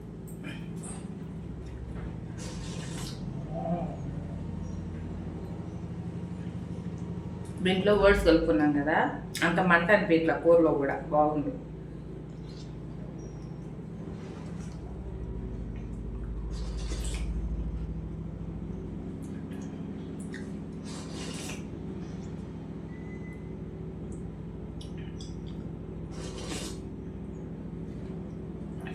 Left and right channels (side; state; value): both; identical; correlation 1.00